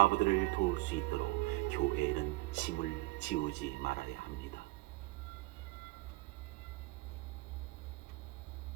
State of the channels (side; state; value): left; quieter; 22.1 dB